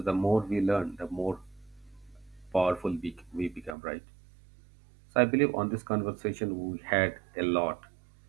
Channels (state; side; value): drops out; left; at 3.8 s